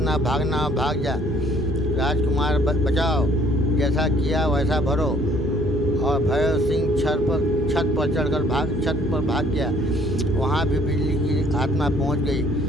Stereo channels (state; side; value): normal; both; correlation 0.60